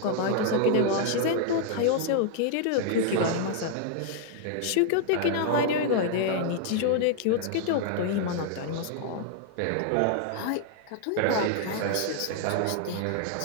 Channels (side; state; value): both; different; correlation 0.00